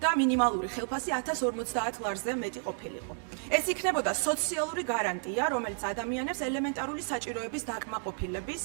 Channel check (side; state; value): left; silent; 57 dB below the other